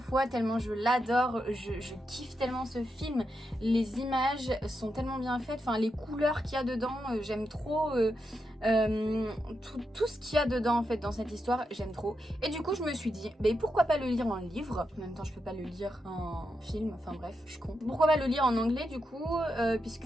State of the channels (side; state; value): both; normal; correlation 0.85